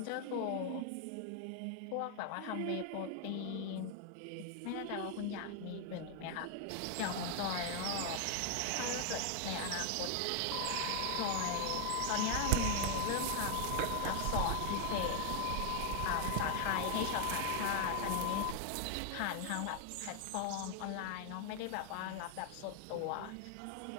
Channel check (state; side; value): different; both; correlation 0.00